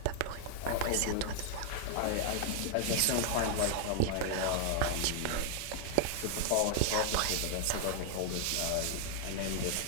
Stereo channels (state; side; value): different; both; correlation 0.00